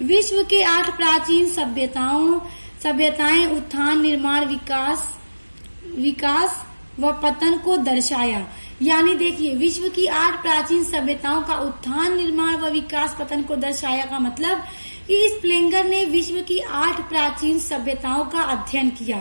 विश्व के 8 प्राचीन सभ्यताओं सभ्यताएं उत्थान, निर्माण, विकास व पतन को दर्शाया। यानी देखिए, विश्व की 8 प्राचीन सभ्यताओं का उत्थान, निर्माण व विकास पतन को दर्शाया का मतलब कि स्प्लेंगर ने विश्व की 8 प्राचीन सभ्यताओं का अध्ययन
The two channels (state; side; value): inverted; both; correlation -1.00